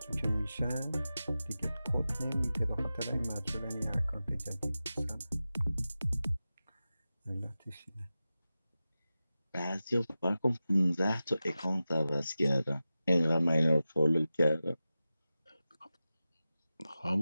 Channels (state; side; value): inverted; both; correlation -0.94